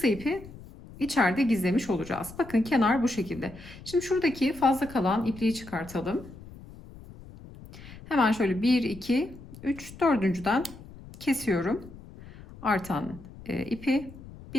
ipi içeride gizlemiş olacağız. Bakın kenar bu şekilde. Şimdi şuradaki fazla kalan ipliği çıkartalım. Hemen şöyle 1, 2, 3, dördüncüden kesiyorum. Artan ipi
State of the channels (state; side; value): noise; left; rumble, 17 dB below the sound